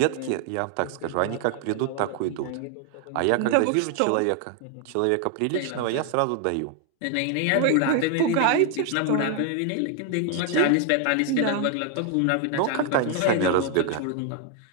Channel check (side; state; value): both; different; correlation 0.00